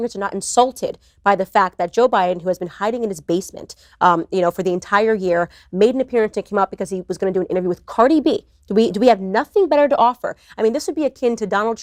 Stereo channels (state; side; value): identical; both; correlation 1.00